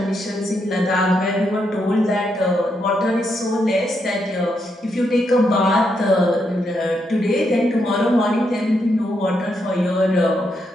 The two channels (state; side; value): normal; both; correlation 0.80